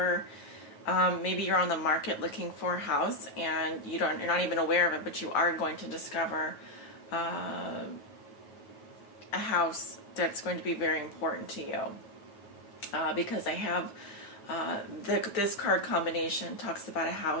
maybe you're on the market looking for a house and you're not even aware of it, but you are going to discover a house that's going to be very important to you, because I have this card combination talks about a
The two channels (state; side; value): late; right; 9.6 ms